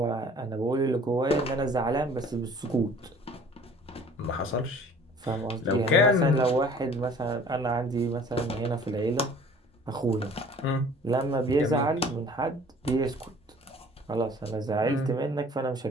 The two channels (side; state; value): both; normal; correlation 0.50